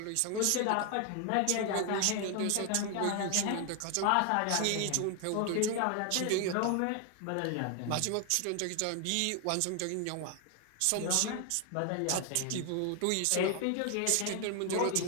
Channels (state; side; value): different; both; correlation 0.00